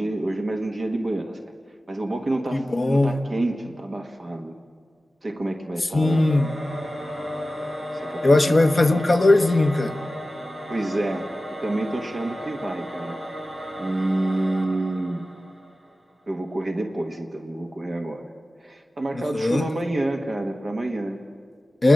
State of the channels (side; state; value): both; normal; correlation 0.95